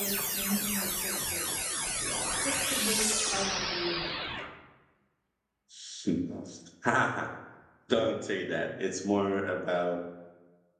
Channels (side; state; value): both; identical; correlation 1.00